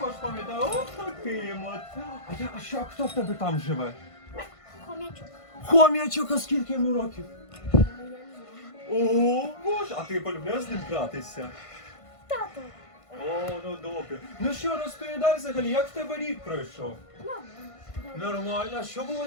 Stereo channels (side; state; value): right; late; 1.5 ms